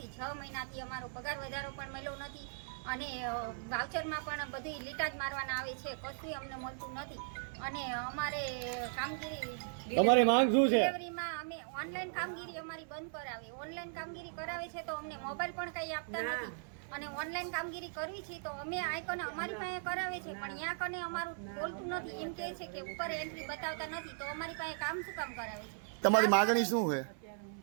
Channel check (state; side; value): silent; left; 53 dB below the other